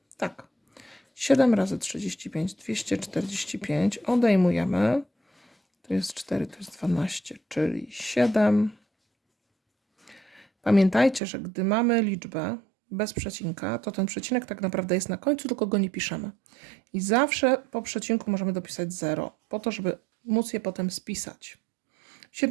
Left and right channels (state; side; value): drops out; left; at 11.2 s